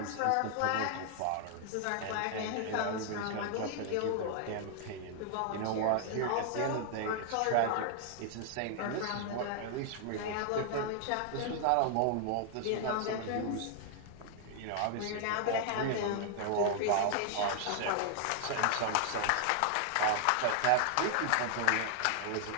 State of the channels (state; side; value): different; both; correlation 0.00